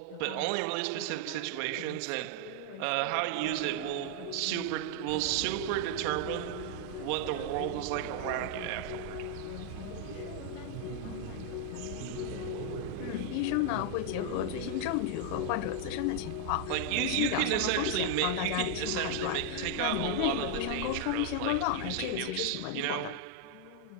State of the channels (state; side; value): different; both; correlation 0.00